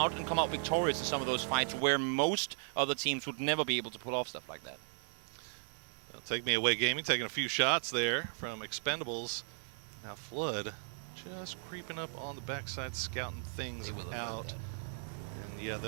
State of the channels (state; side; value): silent; left; 53 dB below the other